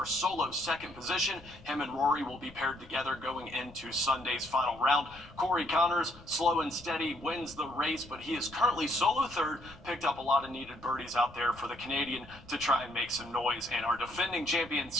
solo second position. Him and Rory will be paired together going into Sunday's final round. Corey Connors, slow and steady, wins the race, but he is currently solo third. Picked up a lot of needed birdies out there for the Canadian to try and make some noise. And our defending champion,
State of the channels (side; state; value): left; noise; rumble, 21 dB below the sound